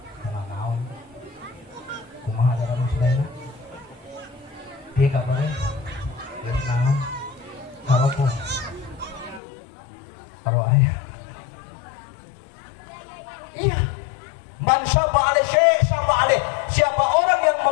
dengan naon kumaha ada kamu selain dia kabarnya dia naon kalau ayah iya man syaba alaihi syai' syaba alaihi. Siapa orang yang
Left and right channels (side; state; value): right; drops out; at 9.4 s